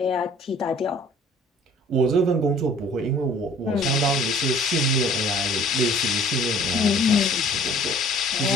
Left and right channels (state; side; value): normal; both; correlation 0.53